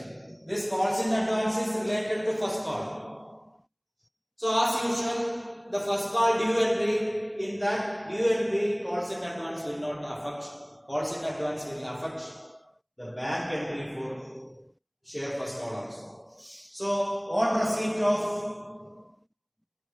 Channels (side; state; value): both; identical; correlation 1.00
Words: This calls in advance is related to first call. So as usual, the first call due entry, in that due entry calls in advance will not affect. Calls in advance will affect the bank entry for share first call also. So on receipt of